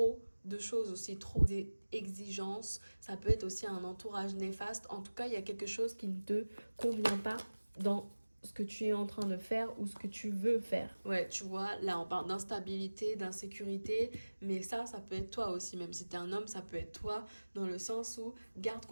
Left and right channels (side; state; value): both; inverted; correlation -1.00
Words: de choses aussi, trop d'exigences. Ça peut être aussi un entourage néfaste. En tout cas, il y a quelque chose qui ne te convient pas dans ce que tu es en train de faire ou ce que tu veux faire. Ouais, tu vois, là on parle d'instabilité, d'insécurité, mais ça peut être toi aussi, même si t'es un homme, ça peut être toi, dans le sens où garde